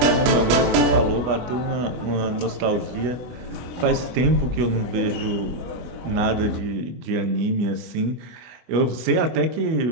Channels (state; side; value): late; left; 24 ms